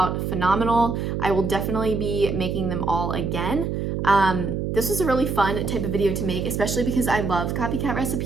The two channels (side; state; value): right; noise; hum, 2 dB below the sound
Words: phenomenal. I will definitely be making them all again. This was a really fun type of video to make, especially because I love Copycat